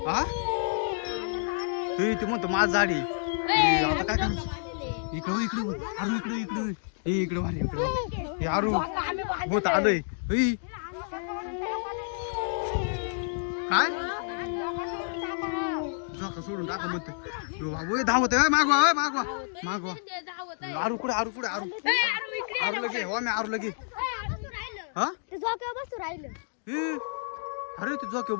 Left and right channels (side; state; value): right; silent; digital silence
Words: हा ते म्हणतो माझ झाडी आता काय करायचं इकडे इकडे आरू इकडे इकडे ए इकडे वारे इकडे हे आरू होत आलोय ए काय झोका सोडून टाका म्हणतो बाबू धावत मागवा मागवा मागवा धावत आहे. आरू कुठे आरू कुठे आरू आरू लगे हो मी आरू लगे हा बसू राहिलं ए अरे ते झोक्यावर